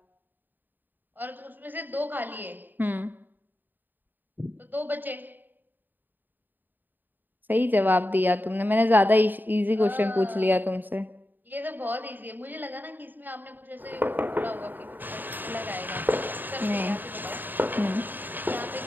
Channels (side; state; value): left; late; 0.090 ms